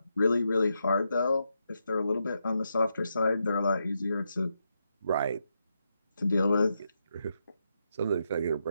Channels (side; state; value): both; inverted; correlation -0.84